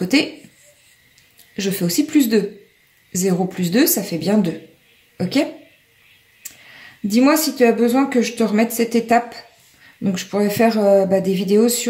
je fais aussi plus 2. 0 plus 2, ça fait bien 2. Ok? Dis-moi si tu as besoin que je te remette cette étape. Donc, je pourrais faire des vidéos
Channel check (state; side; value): identical; both; correlation 1.00